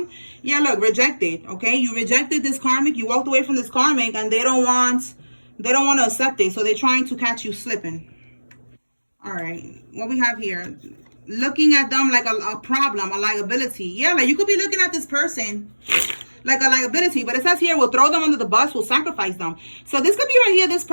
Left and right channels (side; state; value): both; inverted; correlation -1.00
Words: Yeah, look, rejected. Okay. You rejected this karmic. You walked away from this karmic and they don't want to accept it. So they're trying to catch you slipping. All right. What we have here, looking at them like a problem, a liability. Yeah, like you could be looking at this person like a liability, but it says here we'll throw them under the bus, we'll sacrifice them. So this could be right here, this